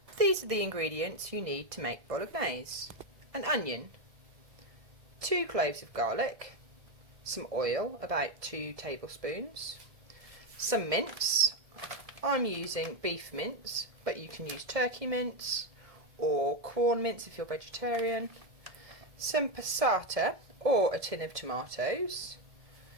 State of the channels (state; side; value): late; left; 1.7 ms